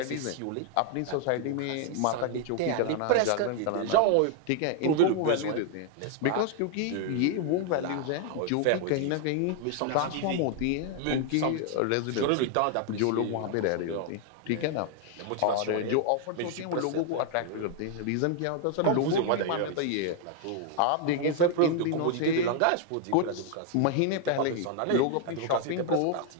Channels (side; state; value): both; different; correlation 0.00